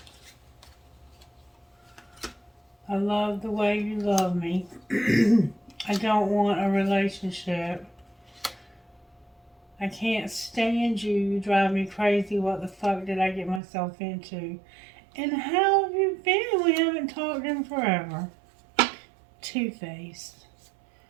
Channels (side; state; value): left; drops out; at 13.6 s